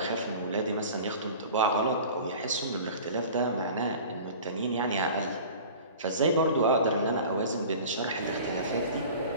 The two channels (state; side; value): inverted; both; correlation -0.40